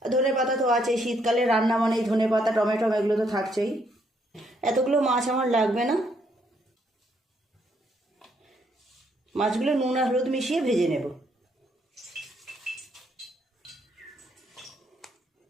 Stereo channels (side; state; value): both; normal; correlation 0.72